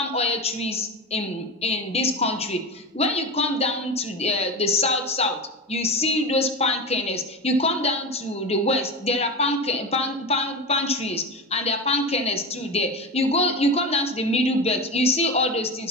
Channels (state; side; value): normal; both; correlation 0.23